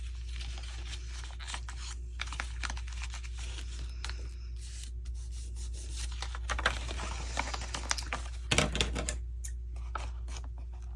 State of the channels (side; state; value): both; identical; correlation 1.00